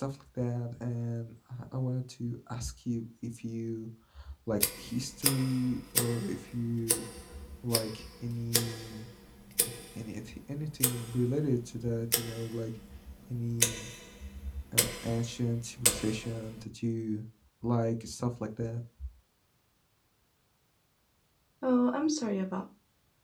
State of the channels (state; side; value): identical; both; correlation 1.00